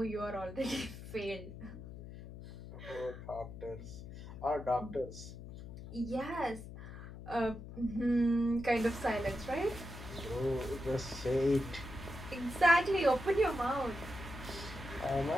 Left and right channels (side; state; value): left; noise; hum, 12 dB below the sound